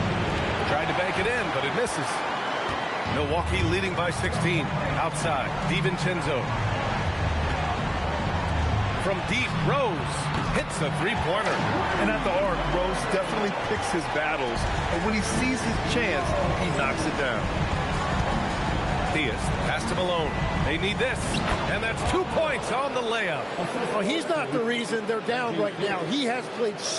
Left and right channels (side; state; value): both; identical; correlation 1.00